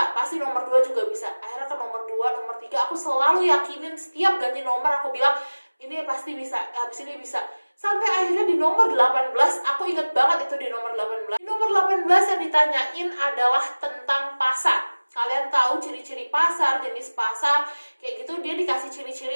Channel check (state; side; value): inverted; both; correlation -1.00